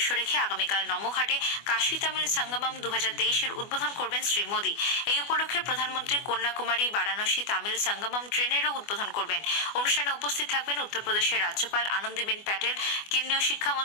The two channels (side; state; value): right; late; 24 ms